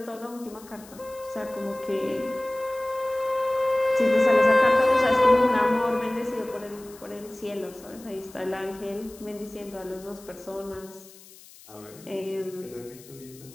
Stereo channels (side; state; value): left; noise; hiss, 21 dB below the sound